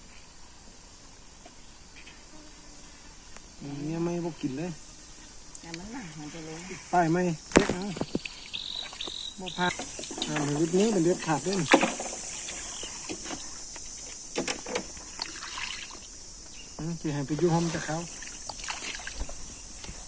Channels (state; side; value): identical; both; correlation 1.00